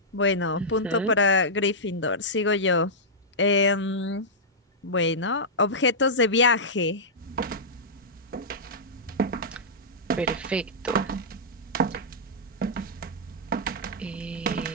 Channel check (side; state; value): both; normal; correlation -0.12